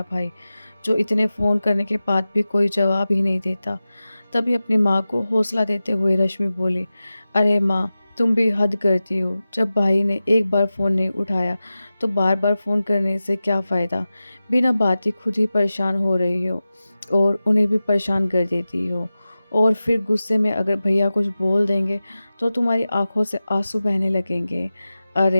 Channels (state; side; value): inverted; both; correlation -0.95